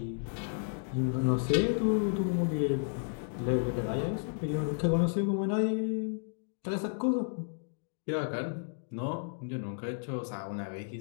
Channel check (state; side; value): silent; right; digital silence